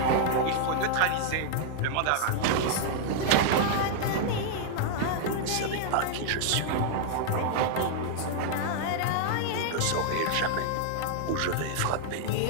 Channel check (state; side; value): different; both; correlation -0.01